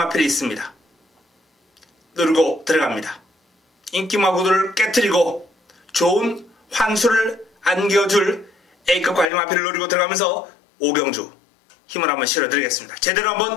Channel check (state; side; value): drops out; right; at 9.3 s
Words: 있습니다. 누르고 들어갑니다. 인기 마구들을 깨트리고 좋은 환수를 안겨줄 A급 관리 마필을 노리고 들어가면서 5경주 힘을 한번 실어드리겠습니다. 제대로